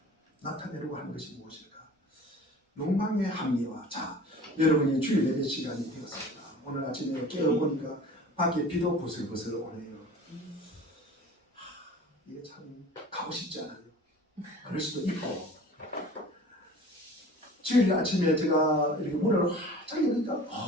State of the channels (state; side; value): normal; both; correlation 0.43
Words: 나타내려고 하는 것이 무엇일까? 욕망의 합리화. 자, 여러분이 주일 예배 시간이 되었습니다. 오늘 아침에 깨어보니까 밖에 비도 부슬부슬 오네요. 이게 참 가고 싶지 않아요. 그럴 수도 있고. 주일 아침에 제가 이렇게 문을 활짝 여니까